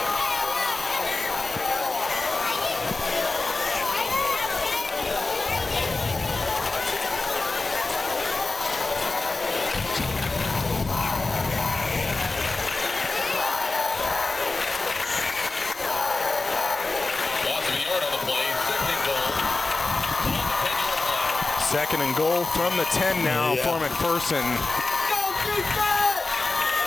Second and goal from the 10 now for McPherson.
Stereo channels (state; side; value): quieter; right; 3.5 dB